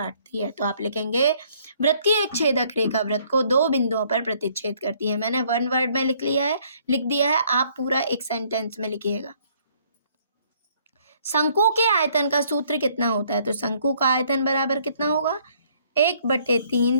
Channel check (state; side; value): inverted; both; correlation -0.64